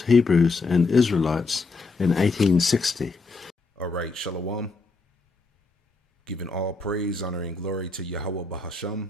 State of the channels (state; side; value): quieter; right; 3.8 dB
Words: Hebrews and Israelites in 1860. All right, Shalom. Giving all praise, honor, and glory to Yahweh Bahasham,